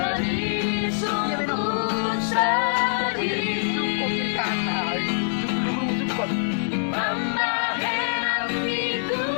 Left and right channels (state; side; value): silent; right; digital silence